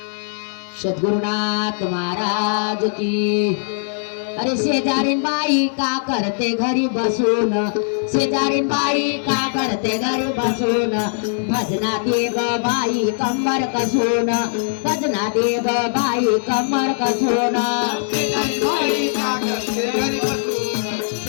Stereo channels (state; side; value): silent; right; digital silence